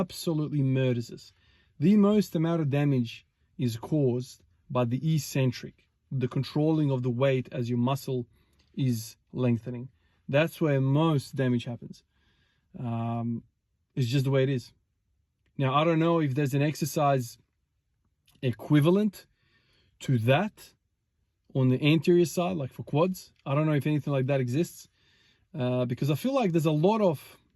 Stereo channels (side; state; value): both; identical; correlation 1.00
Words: murders us. The most amount of damage is caused by the eccentric, the controlling of the weight as your muscle is lengthening. That's where most damage happens. It's just the way it is. Now, I don't know if there's an exercise equivalent to that on the anterior side, like for quads. I don't know if anything like that exists, because I feel like there's a lot of,